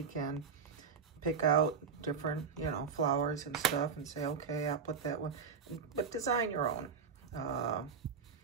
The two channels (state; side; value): quieter; left; 5.9 dB